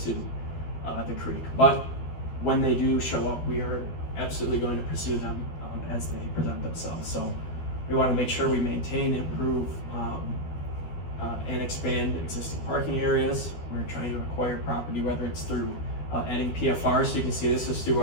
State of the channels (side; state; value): right; late; 13 ms